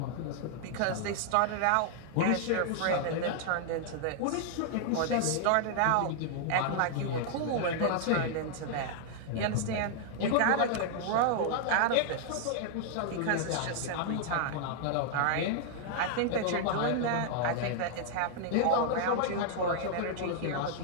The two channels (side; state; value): both; different; correlation 0.00